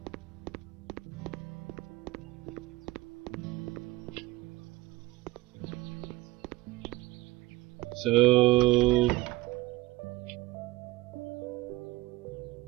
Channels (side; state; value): left; quieter; 18.6 dB